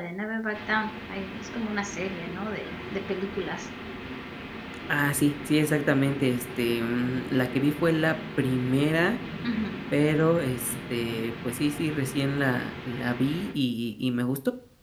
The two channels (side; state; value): both; identical; correlation 1.00